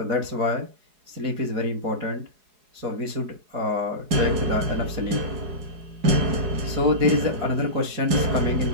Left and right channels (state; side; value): late; left; 4.8 ms